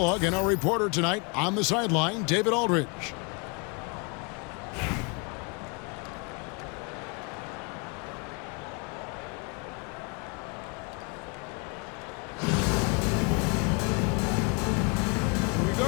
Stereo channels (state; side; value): quieter; right; 32.1 dB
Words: and our reporter tonight on the sideline, David Aldridge. Here we